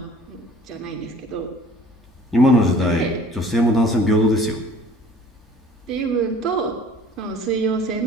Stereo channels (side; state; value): both; normal; correlation 0.51